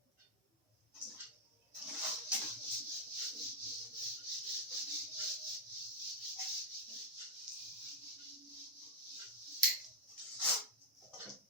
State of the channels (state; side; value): normal; both; correlation -0.03